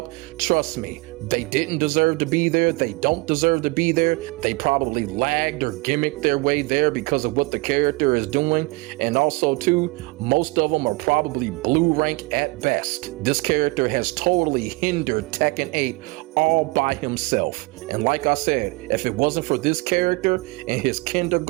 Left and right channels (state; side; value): quieter; left; 24.7 dB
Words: trust me, they didn't deserve to be there. They don't deserve to be there. They probably lagged or gimmicked their way there because of what the character is doing. And also too, most of them are probably blue rank at best. This character has totally hindered Tekken 8 all by himself. And like I said, if it wasn't for this character and his